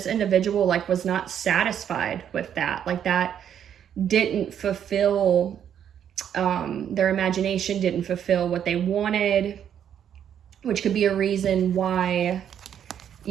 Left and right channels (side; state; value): left; quieter; 9.2 dB